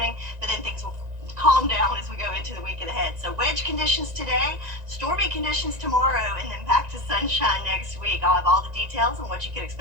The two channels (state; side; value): late; left; 1.9 ms